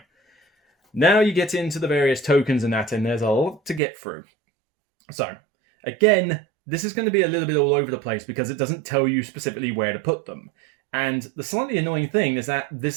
Now you get into the various tokens and that, and there's a lot to get through. So, again, this is going to be a little bit all over the place because it doesn't tell you specifically where to put them. And the slightly annoying thing is that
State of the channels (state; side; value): drops out; left; at 3.8 s